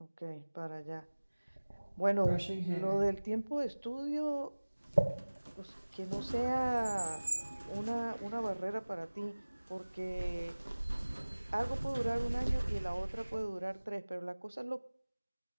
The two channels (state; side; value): inverted; both; correlation -1.00